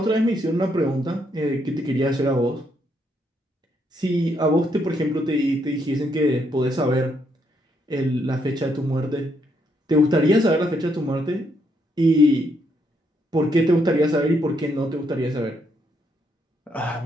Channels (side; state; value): both; normal; correlation 0.75